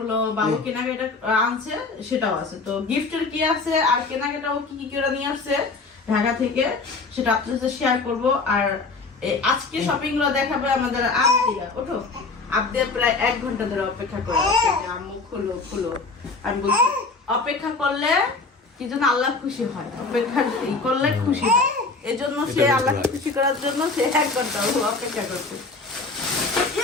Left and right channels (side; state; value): right; quieter; 3.9 dB